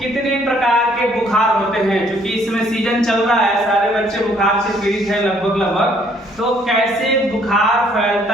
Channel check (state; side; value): normal; both; correlation 0.64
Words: प्रकार के बुखार होते हैं। क्योंकि इसमें सीजन चल रहा है, सारे बच्चे बुखार से पीड़ित हैं लगभग। तो कैसे बुखार